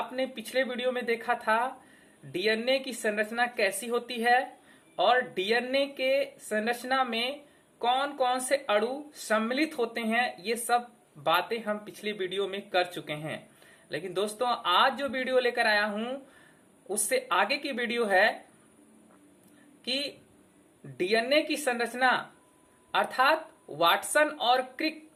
पिछले वीडियो में देखा था डीएनए की संरचना कैसी होती है और डीएनए के संरचना में कौन कौन से अणु सम्मिलित होते हैं। ये सब बातें हम पिछली वीडियो में कर चुके हैं। लेकिन दोस्तों, आज जो वीडियो लेकर आया हूं उससे आगे की वीडियो है कि डीएनए की संरचना अर्थात वाटसन और Crick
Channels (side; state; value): both; identical; correlation 1.00